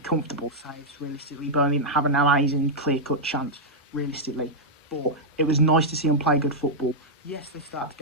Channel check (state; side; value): normal; both; correlation -0.05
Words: saves. Realistically, Burnley didn't have an amazing clear-cut chance. Realistically, but it was nice to see them play good football. Yes, they started